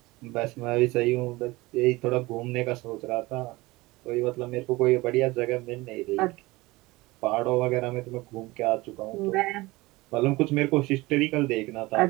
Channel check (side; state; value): left; quieter; 21.2 dB